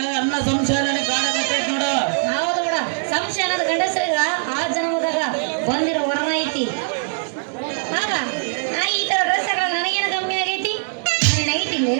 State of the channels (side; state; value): left; silent; digital silence